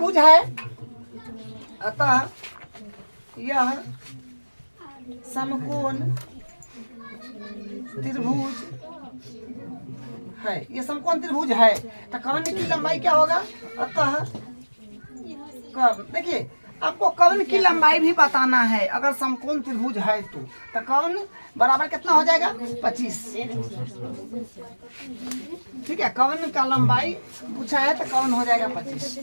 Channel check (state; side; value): inverted; both; correlation -1.00